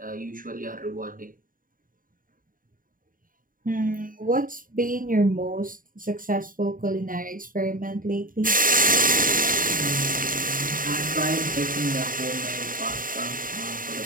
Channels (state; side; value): late; left; 0.40 ms